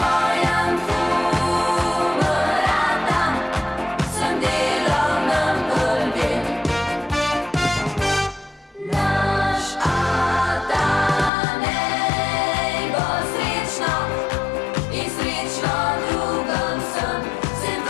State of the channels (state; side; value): drops out; right; at 11.3 s